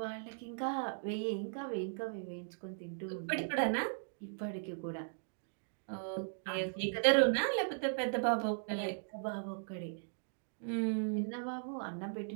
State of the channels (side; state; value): left; silent; digital silence